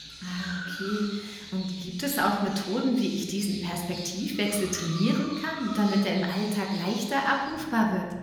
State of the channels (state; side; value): identical; both; correlation 1.00